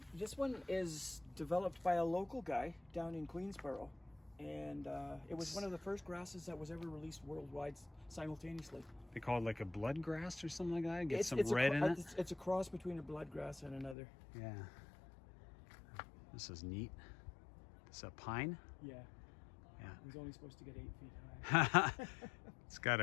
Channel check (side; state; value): right; drops out; at 14.0 s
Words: This one is developed by a local guy down in Queensboro, and it was one of the first grasses that was ever released worldwide simultaneously. They call it like a blood grass or something like that. Get It's some red in it. It's a cross between a bloodgrass and another. Yeah. This is neat. It's a pine. Yeah. Yeah. He's only supposed to get 8 feet high. It's got